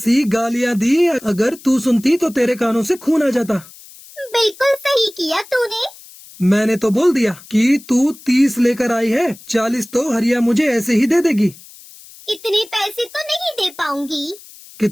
गालियां दी, अगर तू सुनती तो तेरे कानों से खून आ जाता। बिल्कुल सही किया तूने। मैंने तो बोल दिया कि तू 30 लेकर आई है, 40 तो हरिया मुझे ऐसे ही दे देगी। इतने पैसे तो नहीं दे पाऊंगी।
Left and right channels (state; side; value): noise; left; hiss, 21 dB below the sound